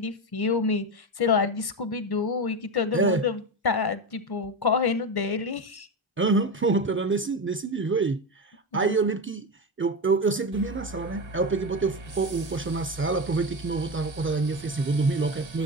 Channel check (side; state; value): both; normal; correlation 0.18